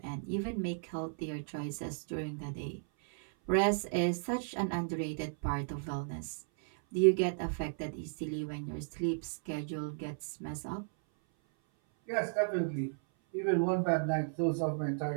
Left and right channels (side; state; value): left; silent; 55 dB below the other